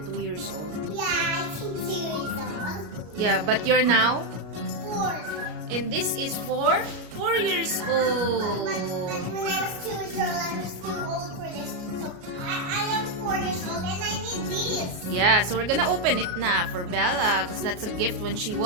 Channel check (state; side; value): late; left; 33 ms